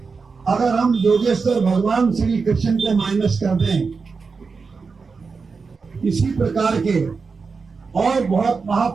अगर हम योगेश्वर भगवान श्री कृष्ण को माइनस कर दें, इसी प्रकार के और बहुत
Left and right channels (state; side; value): quieter; left; 4.8 dB